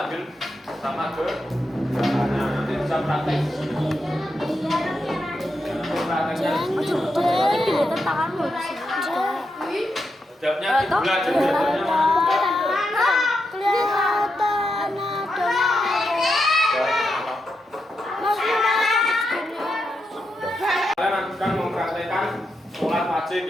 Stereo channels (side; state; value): both; normal; correlation 0.85